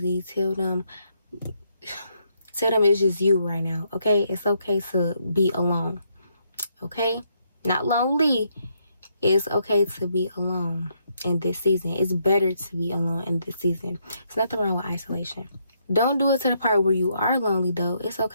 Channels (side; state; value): both; inverted; correlation -0.75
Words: Tell them it's just you right now, okay? It's okay to be alone, okay? Not lonely. It's okay to be alone in this season. It's better to be alone in this season. There's nothing wrong with isolation. Don't do it to the part where you are lonely, though. It's